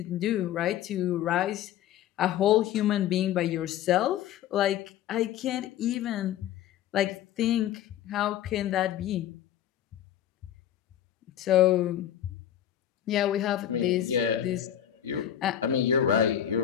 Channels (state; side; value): quieter; right; 11.0 dB